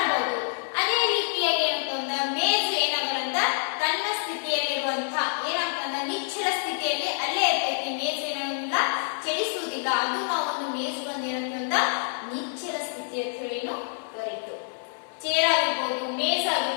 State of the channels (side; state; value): right; silent; 59 dB below the other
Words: ಅದೇ ರೀತಿಯಾಗಿ ಏನಾಗ್ತಂದ್ರ ಮೇಜು ಏನಾಗಲ್ಲ ತನ್ನ ಸ್ಥಿತಿಯಲ್ಲಿರುವಂತಹ ಏನಾಗ್ತಂದ್ರ ನಿಶ್ಚಲ ಸ್ಥಿತಿಯಲ್ಲಿ ಅಲ್ಲೇ ಇರ್ತೈತಿ. ಮೇಜು ಏನಾಗಲ್ಲ ಚಲಿಸುವುದಿಲ್ಲ. ಅದು ನಾವು ಒಂದು ಮೇಜು ಬಂದು ಏನಂತಂದ್ರ ನಿಶ್ಚಲ ಸ್ಥಿತಿ ಅಂತ ಹೇಳಿ ಕರೀತು. ಚೇರ್ ಆಗಿರ್ಬೋದು, ಮೇಜ್